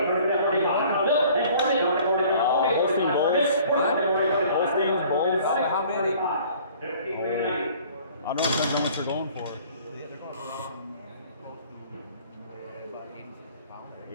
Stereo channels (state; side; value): inverted; both; correlation -0.52